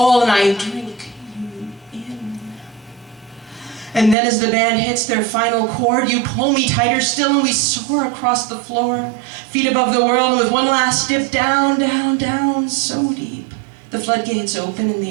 and I drink you in. And then as the band hits their final chord, you pull me tighter still and we soar across the floor, feet above the world, and with one last dip, down, down, down, so deep. The floodgates open and the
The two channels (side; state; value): left; drops out; at 4.2 s